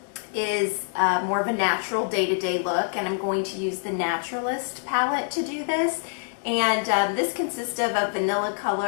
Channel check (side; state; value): right; silent; 61 dB below the other